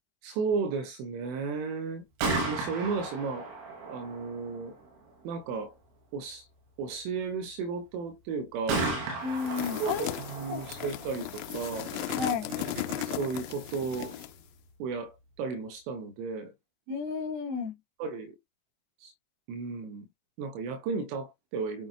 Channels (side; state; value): left; late; 23 ms